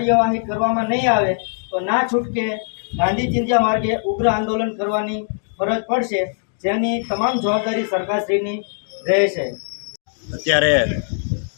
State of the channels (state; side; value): silent; right; digital silence